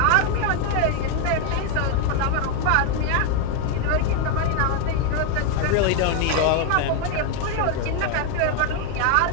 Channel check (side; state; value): both; different; correlation 0.01